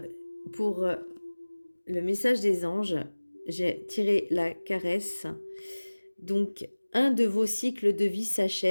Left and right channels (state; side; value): inverted; both; correlation -1.00